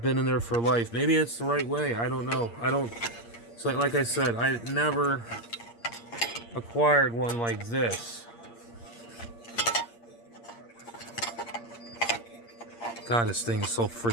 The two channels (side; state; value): right; late; 8.6 ms